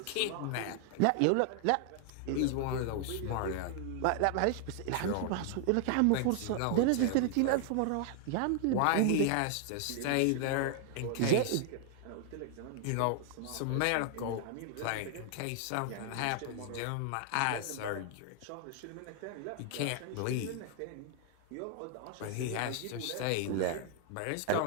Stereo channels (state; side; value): different; both; correlation 0.00